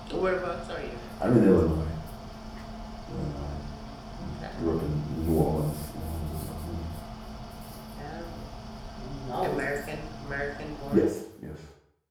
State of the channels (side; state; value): both; identical; correlation 1.00